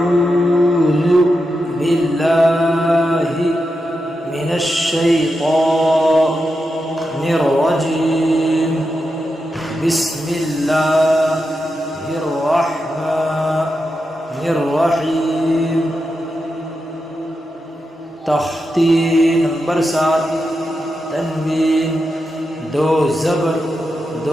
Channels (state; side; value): normal; both; correlation 0.88